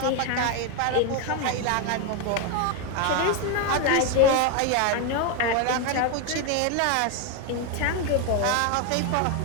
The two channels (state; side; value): different; both; correlation 0.02